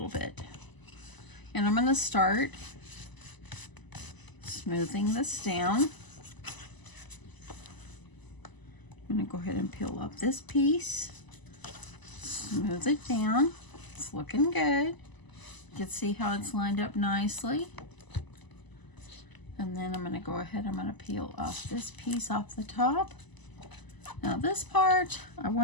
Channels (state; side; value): late; right; 1.0 ms